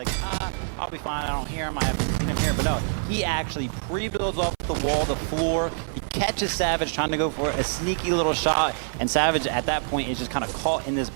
I'll be fine, I don't hear him, I haven't seen him here. But no, he actually pre-builds off the wall, the floor, he catches Savage trying to go for a sneaky little shot, and Savage at that point is just kind of caught in this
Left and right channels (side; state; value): left; silent; 59 dB below the other